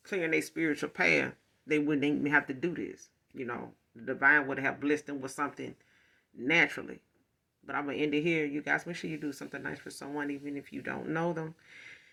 clearing a spiritual path, they wouldn't even have to do this. You know, the divine would have blessed them with something naturally. But I'm going to end it here. You guys, make sure you do something nice for someone, even if you don't know them.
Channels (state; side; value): identical; both; correlation 1.00